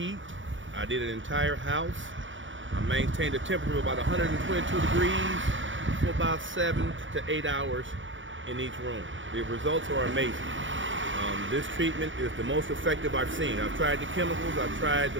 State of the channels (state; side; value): late; left; 0.56 ms